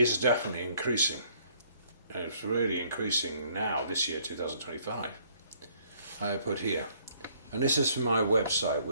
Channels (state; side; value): inverted; both; correlation -0.64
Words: definitely increasing. And it's really increasing now, this year, 2025. I put here. And this is from my website,